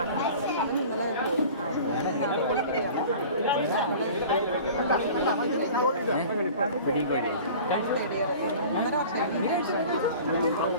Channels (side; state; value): both; inverted; correlation -0.42